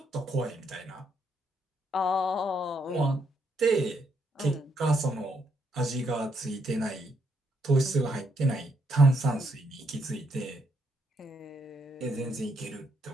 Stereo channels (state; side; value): normal; both; correlation 0.74